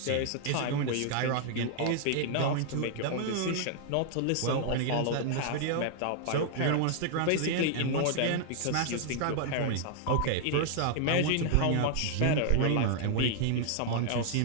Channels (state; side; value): different; both; correlation -0.01